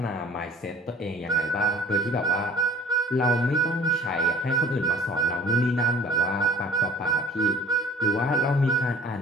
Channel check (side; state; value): both; normal; correlation 0.49